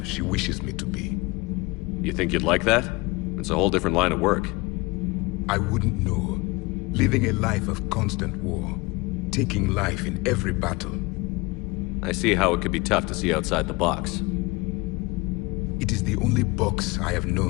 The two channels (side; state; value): right; quieter; 24.6 dB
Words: she wishes me to be. You think you'd like that? It's a whole different line of work. I wouldn't know. Living a life of constant war. Taking life in every battle. I see how it could be tough to see outside the box. It is the only box I have